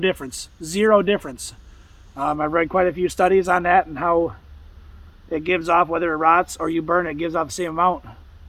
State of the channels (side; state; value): both; identical; correlation 1.00